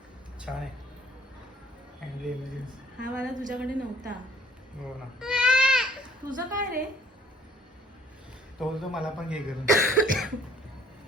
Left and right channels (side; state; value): both; normal; correlation 0.57